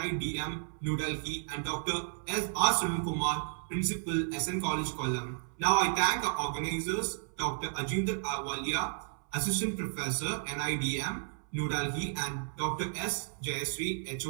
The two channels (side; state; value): left; silent; 56 dB below the other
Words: New Delhi, and Dr. R. Sunil Kumar, Principal, SN College, Kollam. Now I thank our organizers, Dr. Ajinder Walia, Assistant Professor, NIDM, New Delhi, and Dr. S. Jayasri,